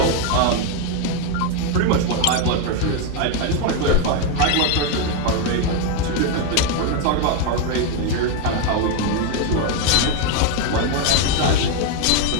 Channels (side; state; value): both; different; correlation 0.01